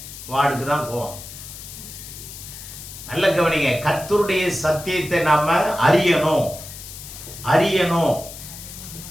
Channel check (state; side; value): noise; left; hiss, 13 dB below the sound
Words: வார்டுக்கு தான் போவோம். நல்ல கவனிங்க, கர்த்தருடைய சத்தியத்தை நாம அறியணும்.